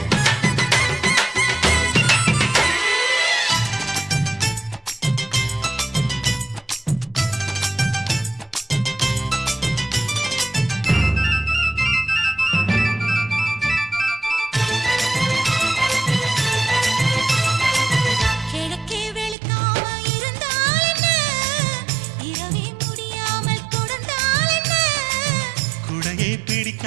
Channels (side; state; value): left; drops out; at 19.4 s